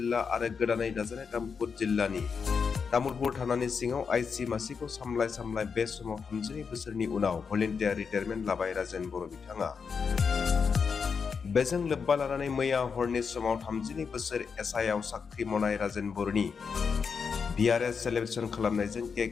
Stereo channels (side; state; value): right; quieter; 5.8 dB